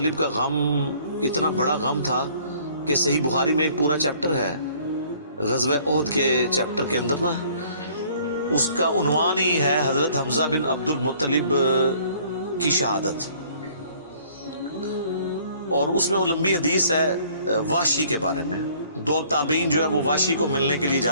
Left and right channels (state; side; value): inverted; both; correlation -0.57